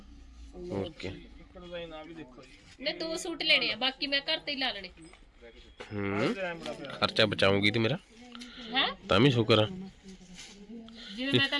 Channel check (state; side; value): identical; both; correlation 1.00